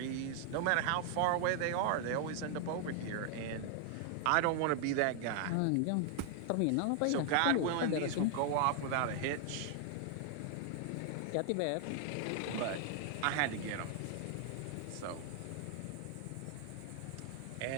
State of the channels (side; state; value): both; different; correlation 0.00